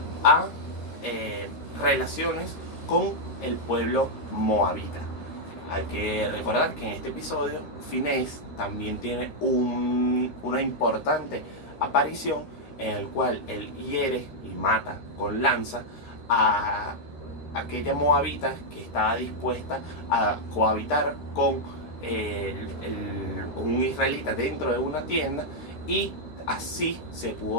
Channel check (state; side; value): late; right; 13 ms